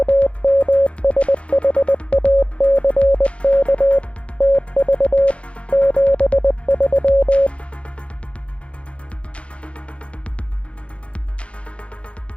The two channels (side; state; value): right; late; 0.061 ms